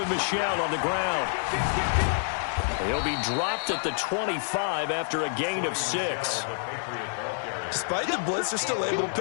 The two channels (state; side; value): silent; right; digital silence